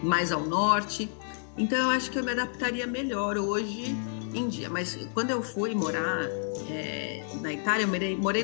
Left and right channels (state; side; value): silent; right; digital silence